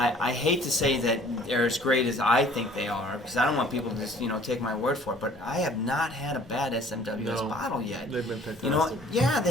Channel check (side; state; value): both; normal; correlation 0.53